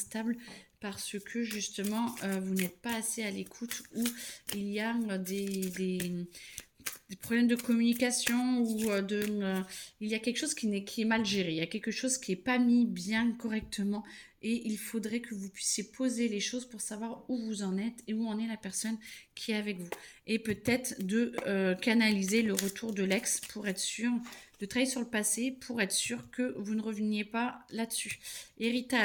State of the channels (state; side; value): identical; both; correlation 1.00